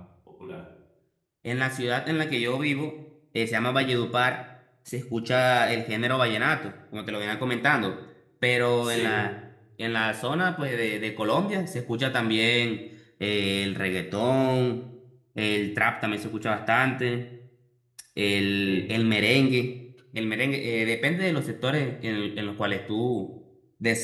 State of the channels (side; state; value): both; identical; correlation 1.00